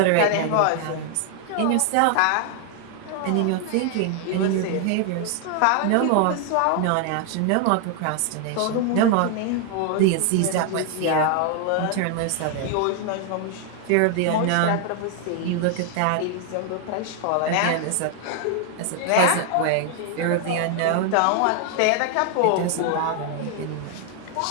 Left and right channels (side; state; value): both; different; correlation 0.00